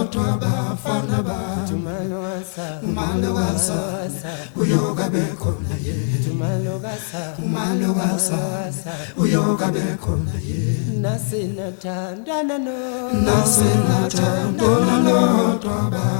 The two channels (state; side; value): silent; right; digital silence